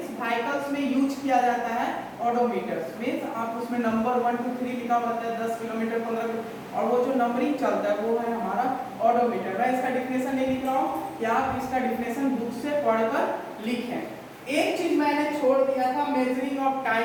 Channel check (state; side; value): identical; both; correlation 1.00